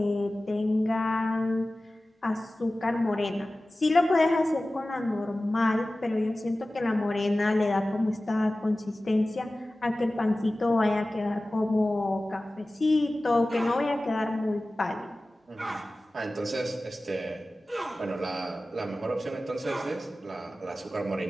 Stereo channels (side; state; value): both; normal; correlation 0.96